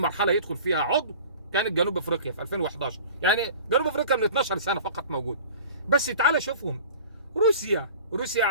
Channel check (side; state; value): both; inverted; correlation -0.42